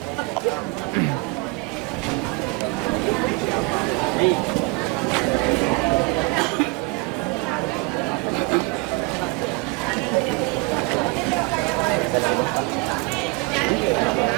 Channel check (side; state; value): left; quieter; 26.9 dB